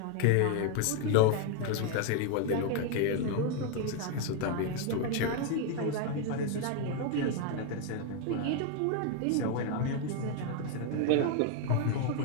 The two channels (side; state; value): both; different; correlation 0.01